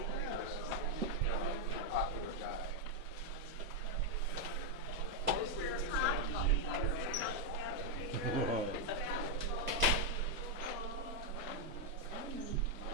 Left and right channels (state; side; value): normal; both; correlation 0.00